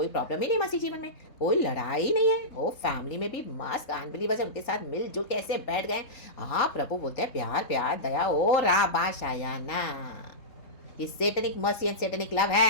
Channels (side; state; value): right; late; 3.7 ms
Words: प्रॉब्लम ही नहीं मसीह जीवन में, कोई लड़ाई नहीं है। ओ फैमिली में भी मस्त अनबिलीवर्स उनके साथ मिलजुल के ऐसे बैठ गए। हाँ प्रभु बोलते हैं प्यार प्यार दया। ओ राबा शायाना। ये Satinique mercy and Satinique love